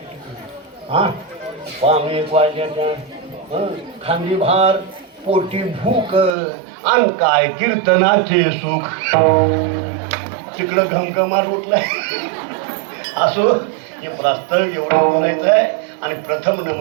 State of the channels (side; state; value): left; drops out; at 6.4 s